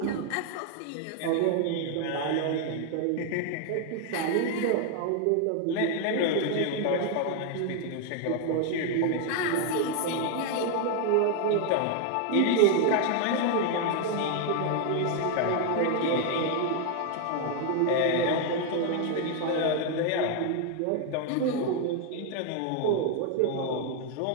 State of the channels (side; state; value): both; different; correlation 0.00